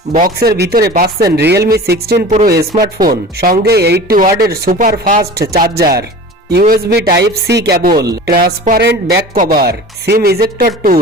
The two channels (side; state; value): both; normal; correlation 0.38